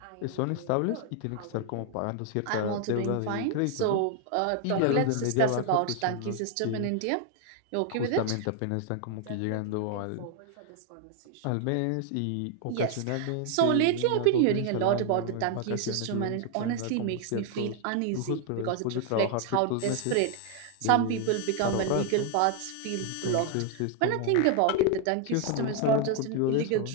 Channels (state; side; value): different; both; correlation 0.00